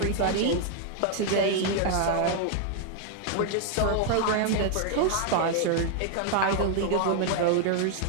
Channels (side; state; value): both; different; correlation 0.00